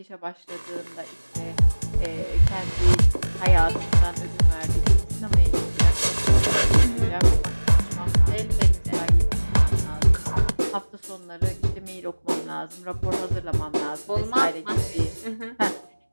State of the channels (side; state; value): both; inverted; correlation -1.00